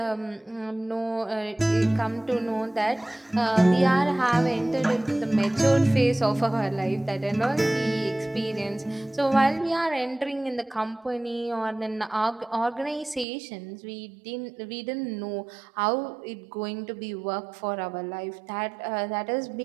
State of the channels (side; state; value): left; drops out; at 13.2 s